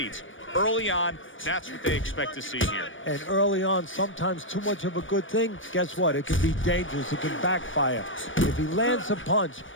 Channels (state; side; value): late; right; 0.56 ms